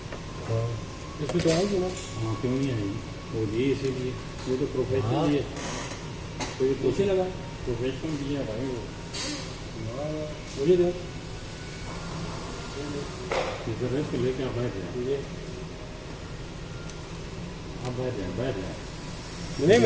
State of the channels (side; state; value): both; identical; correlation 1.00